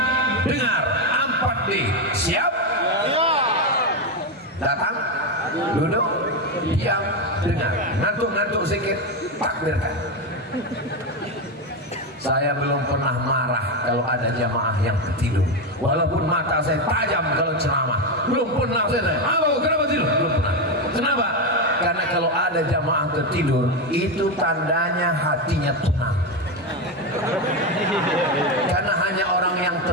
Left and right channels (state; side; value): normal; both; correlation 0.11